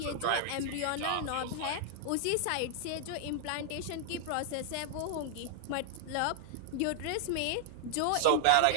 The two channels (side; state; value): both; different; correlation -0.01